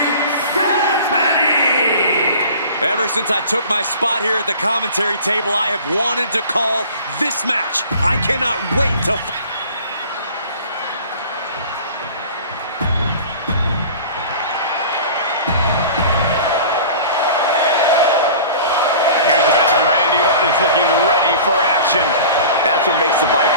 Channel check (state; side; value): inverted; both; correlation -0.41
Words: Stephanie! Ever since I took my spot here at the commentary table, I have wanted to call this match. I cannot wait to... Is looking ready for action. That's what makes the